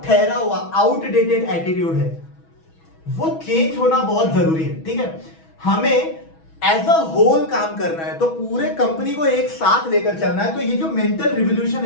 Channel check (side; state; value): right; late; 6.2 ms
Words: ठहरा हुआ, आउटडेटेड एटीट्यूड है, वो चेंज होना बहुत जरूरी है, ठीक है। हमें एज अ होल काम करना है, तो पूरे कंपनी को एक साथ लेकर चलना है। तो ये जो मेंटल रिवोल्यूशन